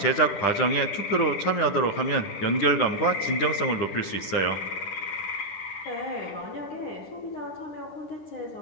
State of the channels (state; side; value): late; right; 10 ms